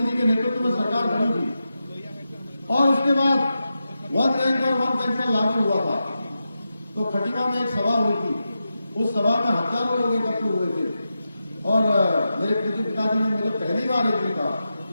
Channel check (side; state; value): both; inverted; correlation -0.90